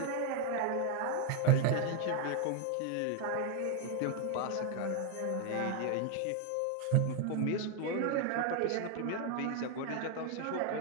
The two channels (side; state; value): both; different; correlation 0.01